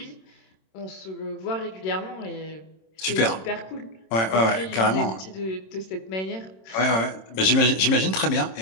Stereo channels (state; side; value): late; right; 26 ms